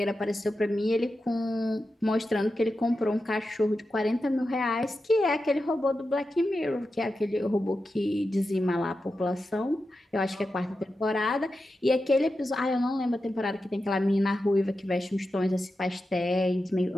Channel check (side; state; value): both; normal; correlation 0.90